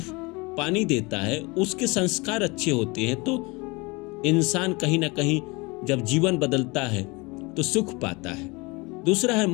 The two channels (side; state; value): right; quieter; 26.0 dB